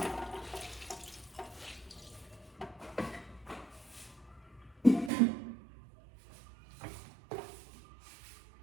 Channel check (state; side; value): drops out; left; at 5.1 s